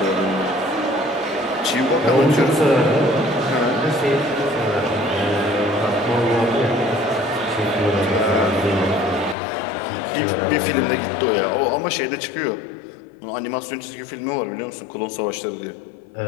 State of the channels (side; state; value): right; drops out; at 9.3 s